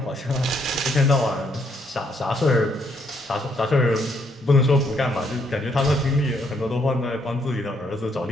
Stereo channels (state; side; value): normal; both; correlation 0.72